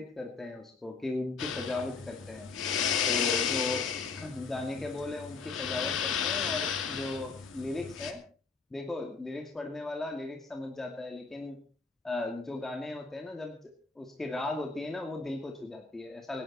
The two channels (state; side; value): quieter; right; 4.6 dB